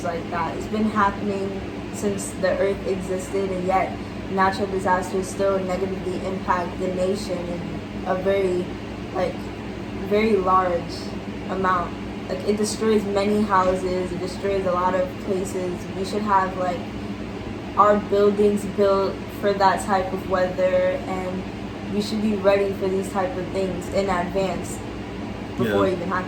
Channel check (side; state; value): both; identical; correlation 1.00